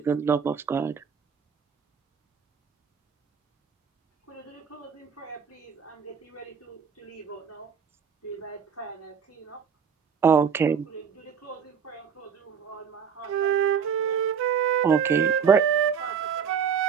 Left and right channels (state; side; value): quieter; left; 6.9 dB